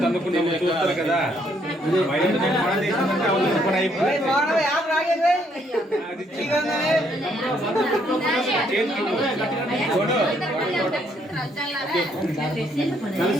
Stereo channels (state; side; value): normal; both; correlation 0.70